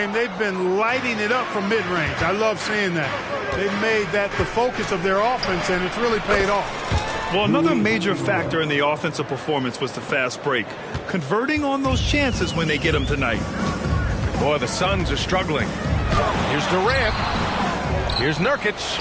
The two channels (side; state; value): both; identical; correlation 1.00